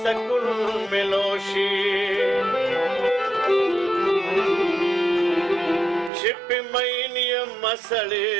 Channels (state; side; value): drops out; left; at 6.1 s